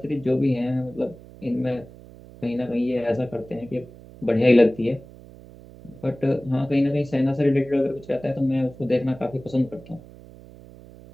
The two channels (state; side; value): noise; right; hum, 19 dB below the sound